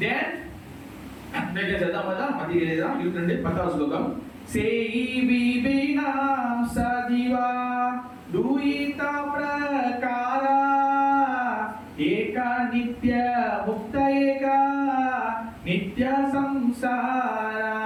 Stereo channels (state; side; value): identical; both; correlation 1.00